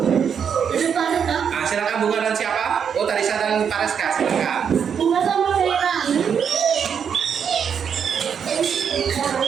Nah, silakan Bunga dan siapa? Oh, Tarisa dan Tareska, silakan. Bunga sama Tarisa.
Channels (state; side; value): quieter; left; 7.4 dB